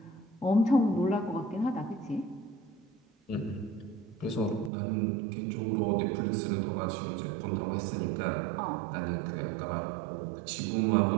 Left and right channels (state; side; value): drops out; left; at 4.7 s